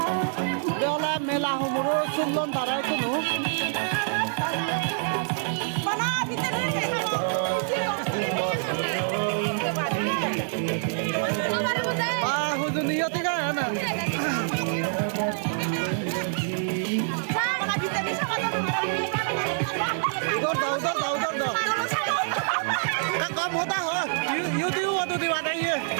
beola mela humuro sullon tarai kunu hujuniyo tiga na उधर दो का कम होता हो यू तो दिवा ये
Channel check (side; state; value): left; silent; digital silence